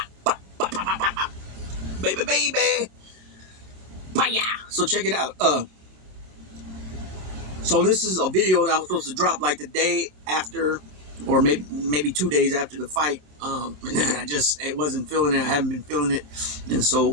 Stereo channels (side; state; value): left; late; 26 ms